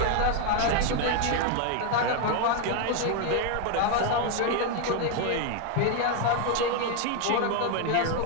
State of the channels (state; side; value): different; both; correlation 0.01